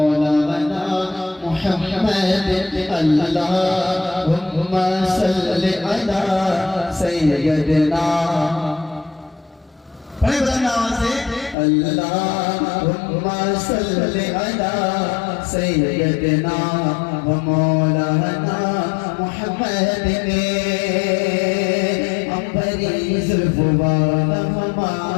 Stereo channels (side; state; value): right; drops out; at 11.6 s